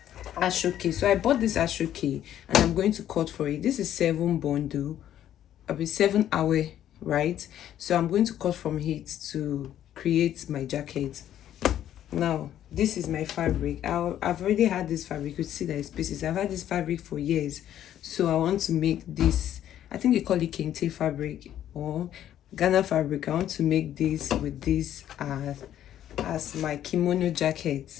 Asooke. So I bought this Asooke and I'm going to cut for it. This is 7 bundle. I'll be 7 hour, right? So I'm going to cut from it to create my jacket. Now this is my fabric. I've already had this fabric. You could see that it's pieces. I've had this fabric for years, so I want to make this. I think they call it kente fabric or Ghana fabric. I want to make this with this as my kimono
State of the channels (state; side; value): quieter; right; 11.3 dB